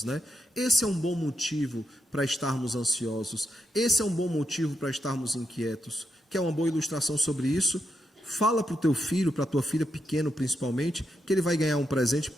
né? Esse é um bom motivo para estarmos ansiosos, esse é um bom motivo para estarmos inquietos. Quer uma boa ilustração sobre isso? Fala para o teu filho, para a tua filha, pequeno principalmente, que ele vai ganhar um presente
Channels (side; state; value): both; normal; correlation 0.83